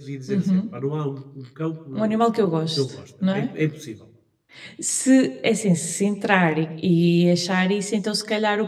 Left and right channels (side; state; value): both; identical; correlation 1.00